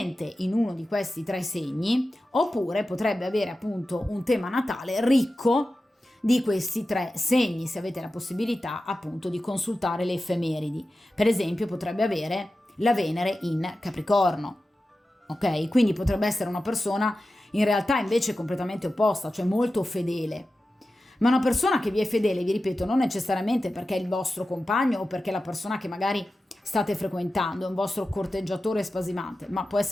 in uno di questi tre segni, oppure potrebbe avere appunto un tema natale ricco di questi tre segni, se avete la possibilità appunto di consultare le effemeridi. Per esempio potrebbe avere la Venere in Capricorno, ok? Quindi potrebbe essere una persona in realtà invece completamente opposta, cioè molto fedele. Ma una persona che vi è fedele, vi ripeto, non necessariamente perché è il vostro compagno o perché è la persona che magari state frequentando, è un vostro corteggiatore spasimante, ma può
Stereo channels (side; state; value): both; normal; correlation 0.93